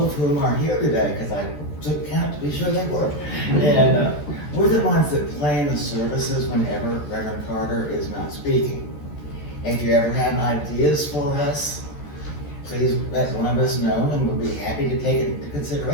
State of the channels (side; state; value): right; late; 14 ms